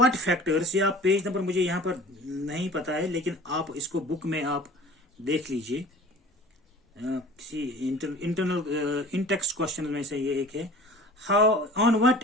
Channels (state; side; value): normal; both; correlation 0.44